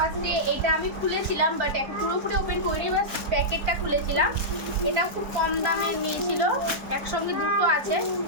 এটা আমি খুলেছিলাম, বাট এখন পুরোপুরি ওপেন করিনি, বাস প্যাকেটটা খুলেছিলাম। এটাও খুব কম দামে নিয়েছিল, একসঙ্গে দুটো আছে।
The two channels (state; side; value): late; left; 4.4 ms